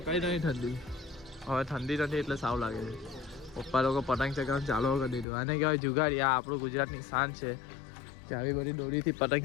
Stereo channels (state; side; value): drops out; right; at 5.2 s